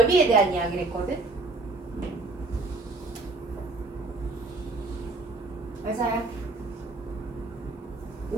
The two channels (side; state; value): left; quieter; 3.2 dB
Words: 대한 이야기를 했거든? 맞아요.